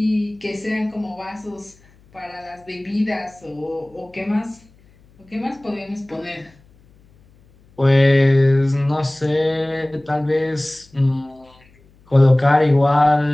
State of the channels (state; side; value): noise; left; hum, 30 dB below the sound